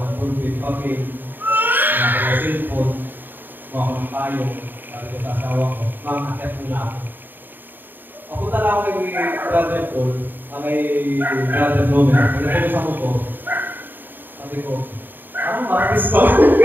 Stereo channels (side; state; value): left; late; 0.092 ms